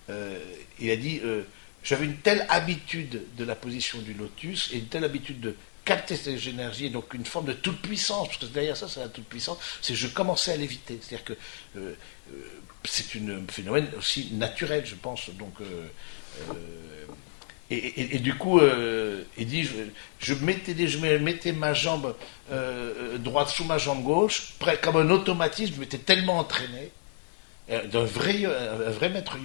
il a dit j'avais une telle habitude de la position du lotus et une telle habitude de capter ces énergies, et donc une forme de toute puissance, parce que derrière ça, c'est la toute puissance, c'est que je commençais à l'éviter. C'est-à-dire que euh, c'est un phénomène aussi naturel, je pense. Donc, du coup, il dit, je mettais ma jambe droite sous ma jambe gauche, comme un automatisme, je m'étais tellement entraîné, un vrai maître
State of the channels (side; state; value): right; silent; digital silence